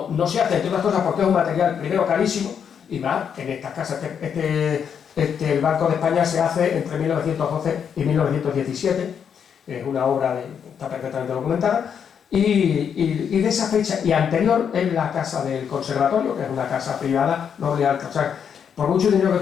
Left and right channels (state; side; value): quieter; right; 7.6 dB